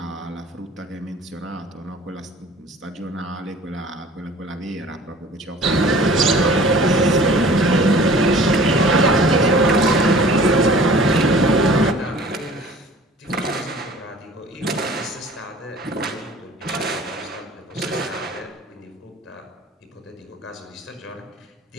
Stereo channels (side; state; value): both; normal; correlation 0.47